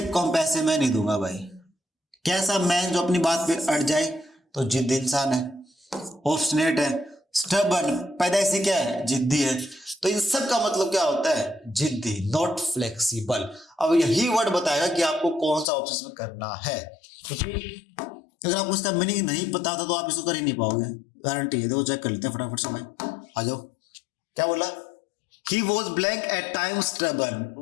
कम पैसे मैं नहीं दूंगा भाई। कैसा मैन जो अपनी बात पे अड़ जाए तो जिद्दी इंसान है। ऑब्स्टिनेट है, स्टबर्न पैदाइशी क्या है, जिद्दी है। तो इन सब का मतलब क्या होता है, जिद्दी, नॉट फ्लेक्सिबल। अब यही वर्ड बताएगा कि आपको कौन सा ऑप्शन में करना है, क्योंकि अगर आपको इसका मीनिंग नहीं पता था तो आप इसको कर ही नहीं पाओगे, गारंटी है। देखो चेक कर लेते हैं फटाफट से भाई, आ जाओ। क्या बोला, he was blank at time stubborn,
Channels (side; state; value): right; drops out; at 15.7 s